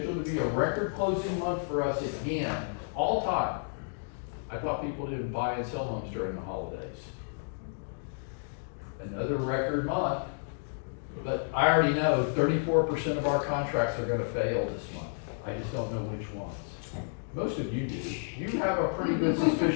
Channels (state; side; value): silent; right; digital silence